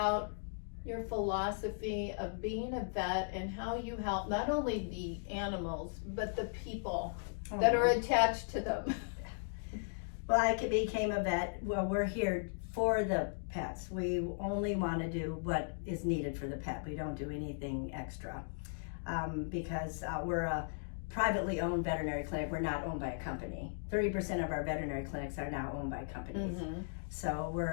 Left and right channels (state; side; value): silent; right; digital silence